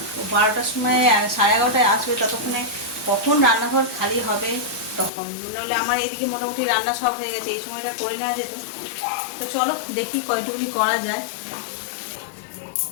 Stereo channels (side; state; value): right; drops out; at 5.1 s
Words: 12টার সময় 11:30টায় আসবে, ততক্ষণে কখন রান্নাঘর খালি হবে তখন, নাহলে আমার এদিকে মোটামুটি রান্না সব হয়ে গেছে, এই সময়টা করে নেওয়া যেত। তো চলো দেখি কয়টুকু করা যায়।